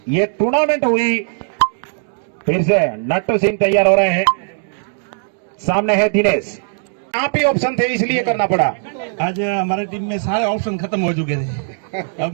ये टूर्नामेंट हुई। फिर से नट्टू सिंह तैयार हो रहे हैं, सामने है दिनेश। आप ही ऑप्शन थे इसलिए करना पड़ा। आज हमारे टीम में सारे ऑप्शन खत्म हो चुके थे। अब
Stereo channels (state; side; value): silent; left; digital silence